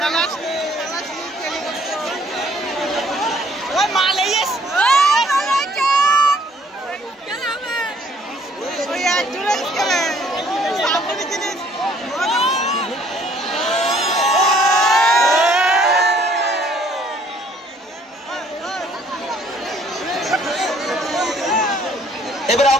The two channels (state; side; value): normal; both; correlation 0.61